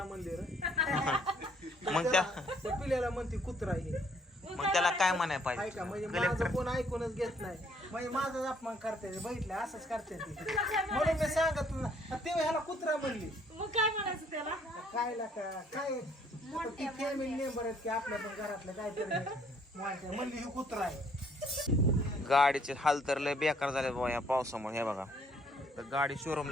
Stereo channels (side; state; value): both; normal; correlation 0.64